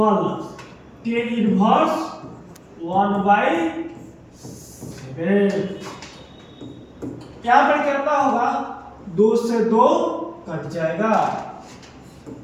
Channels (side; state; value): both; identical; correlation 1.00